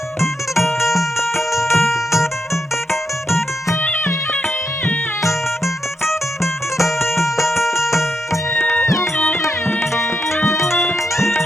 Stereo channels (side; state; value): both; normal; correlation 0.83